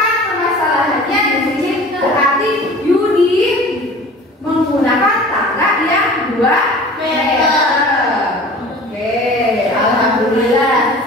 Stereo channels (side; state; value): both; normal; correlation 0.42